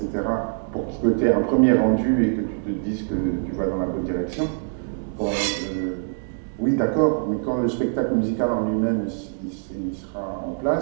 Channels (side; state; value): left; silent; digital silence